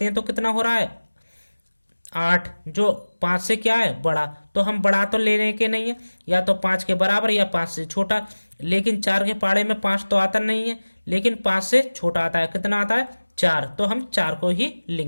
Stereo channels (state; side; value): inverted; both; correlation -1.00